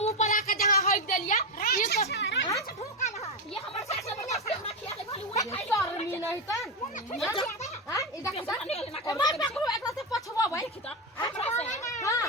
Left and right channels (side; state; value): both; normal; correlation 0.12